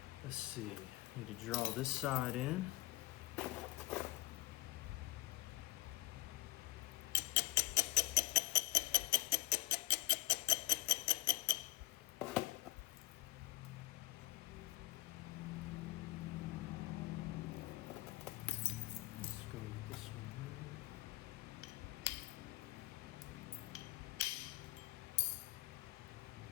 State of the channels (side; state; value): right; quieter; 18.1 dB